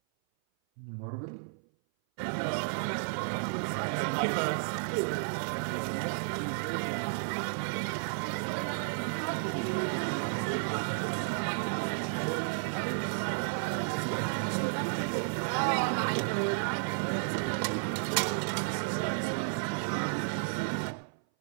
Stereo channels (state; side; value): silent; left; 56 dB below the other